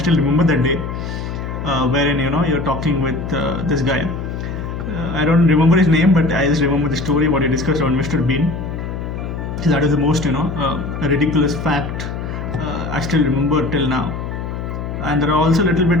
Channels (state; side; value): noise; left; hum, 6 dB below the sound